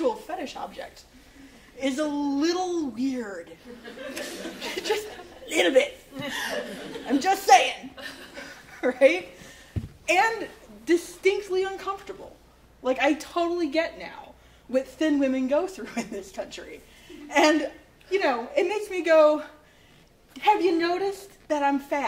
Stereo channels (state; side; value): identical; both; correlation 1.00